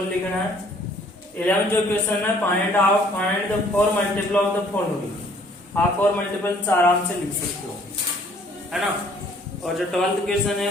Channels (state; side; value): normal; both; correlation 0.59